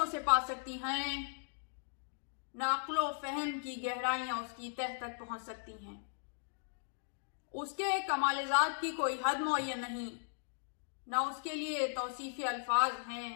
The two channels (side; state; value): right; silent; digital silence